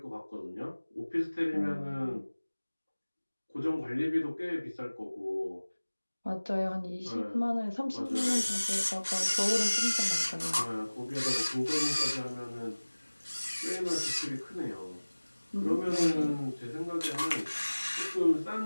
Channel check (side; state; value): both; inverted; correlation -1.00